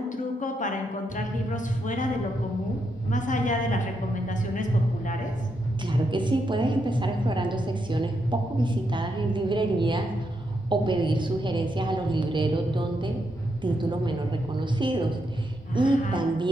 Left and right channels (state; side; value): normal; both; correlation 0.81